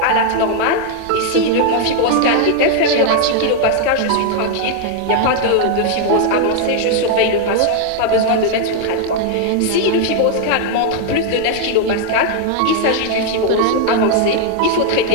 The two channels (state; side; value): different; both; correlation 0.00